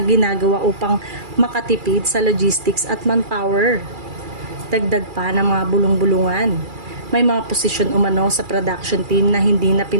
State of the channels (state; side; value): late; left; 2.4 ms